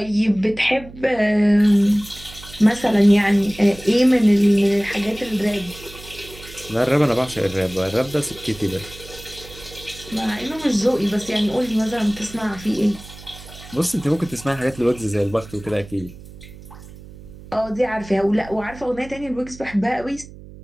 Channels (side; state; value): right; noise; hum, 18 dB below the sound